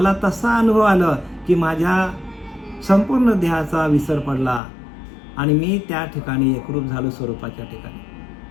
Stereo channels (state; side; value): drops out; right; at 4.6 s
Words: तसा अनुभव आला की माझ्या संपूर्ण देहाचा विसर पडला आणि मी त्या ठिकाणी एकरूप झालो स्वरूपाच्या ठिकाणी.